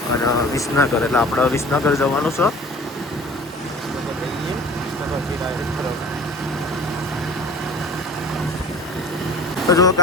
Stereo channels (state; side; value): normal; both; correlation 0.43